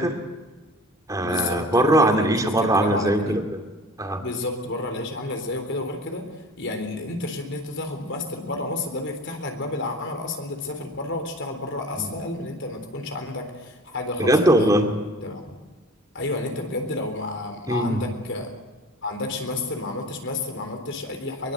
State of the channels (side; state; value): both; normal; correlation 0.42